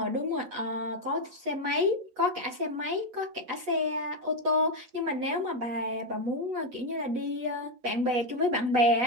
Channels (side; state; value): left; late; 8.2 ms